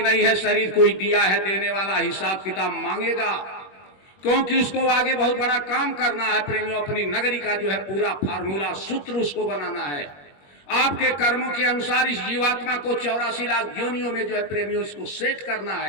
नहीं है, शरीर कोई दिया है, देने वाला हिसाब किताब मांगेगा, क्योंकि उसको आगे बहुत बड़ा काम करना है प्रेमियों। अपनी नगरी का जो है पूरा फार्मूला सूत्र उसको बनाना है। आपके कर्मों के अनुसार इस जीवात्मा को 84 लाख योनियों में जो है प्रेमियों इसको सेट करना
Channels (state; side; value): late; right; 21 ms